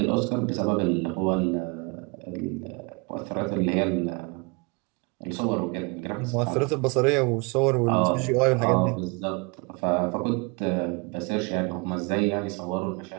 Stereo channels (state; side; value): quieter; left; 30.4 dB